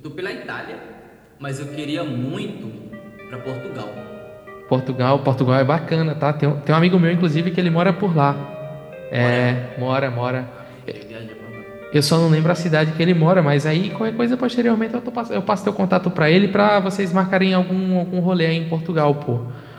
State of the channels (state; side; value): identical; both; correlation 1.00